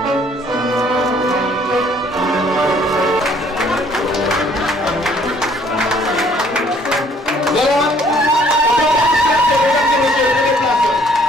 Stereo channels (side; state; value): both; normal; correlation 0.61